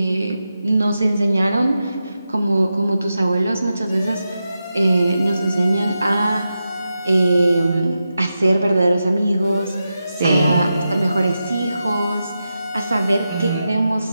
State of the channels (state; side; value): inverted; both; correlation -0.89